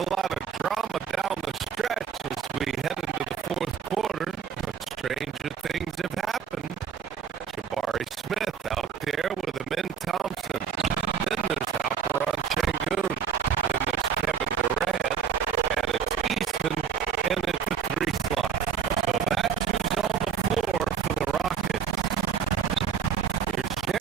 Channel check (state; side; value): quieter; left; 7.5 dB